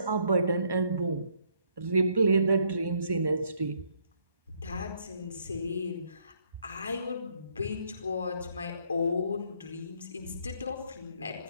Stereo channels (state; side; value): inverted; both; correlation -0.69